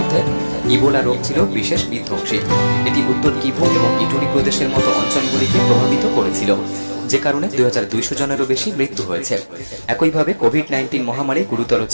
ইবোলা রোগ ছিল বিশেষ বিধ্বংসী। এটি উত্তর কিভু এবং ইটুরি প্রদেশের মতো অঞ্চলগুলিকে প্রভাবিত করেছিল, যে কারণে 2200 জনেরও বেশি মৃত্যু হয়েছে। একইভাবে কোভিড-19 মহামারী গুরুতর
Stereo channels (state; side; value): inverted; both; correlation -1.00